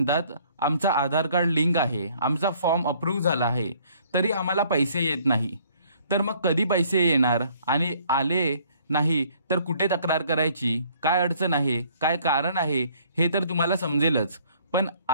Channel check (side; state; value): both; inverted; correlation -0.60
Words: आमचा आधार कार्ड लिंक आहे, आमचा फॉर्म अप्रूव्ह झाला आहे, तरी आम्हाला पैसे येत नाही। तर मग कधी पैसे येणार आणि आले नाही तर कुठे तक्रार करायची, काय अडचण आहे, काय कारण आहे हे तर तुम्हाला समजेलच। पण